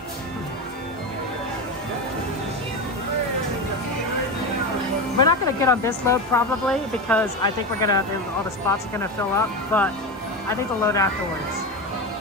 We're not gonna get on this load probably because I think all the spots are gonna fill up, but I think the load afterwards.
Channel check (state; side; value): normal; both; correlation 0.19